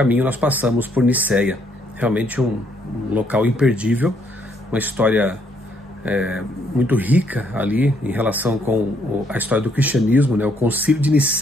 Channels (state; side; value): normal; both; correlation 0.70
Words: nós passamos por Niceia. Realmente um local imperdível, uma história muito rica ali em relação com a história do cristianismo, né? O Concílio de